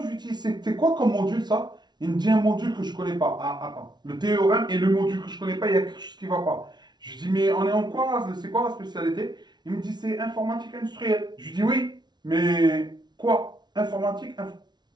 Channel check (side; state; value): left; late; 0.20 ms